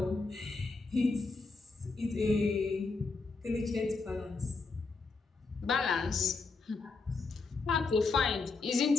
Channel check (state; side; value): quieter; right; 4.0 dB